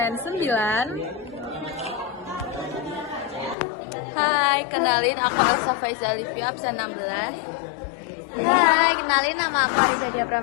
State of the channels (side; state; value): right; drops out; at 3.6 s